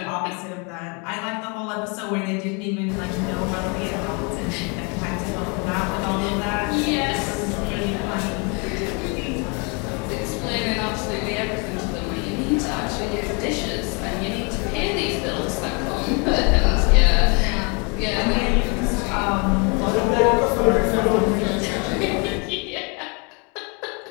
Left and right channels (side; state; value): right; quieter; 33.0 dB